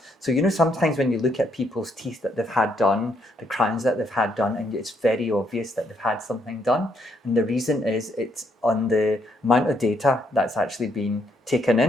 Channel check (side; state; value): both; normal; correlation 0.73